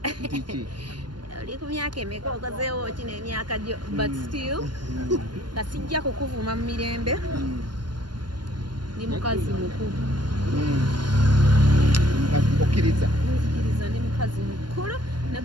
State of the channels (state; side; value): late; left; 0.71 ms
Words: oli ku myaka emeka okozeewo ki n'emyaka gyo but still nga sijja kukuvuma mu mirembe ndi mukazi mukulu okkiriza nzikiriza ndi mukazi mukulu ne